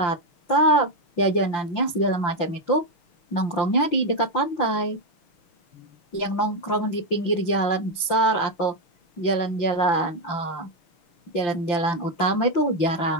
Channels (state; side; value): late; right; 5.8 ms